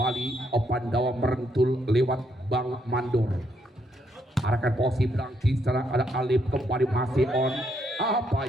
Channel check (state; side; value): normal; both; correlation 0.75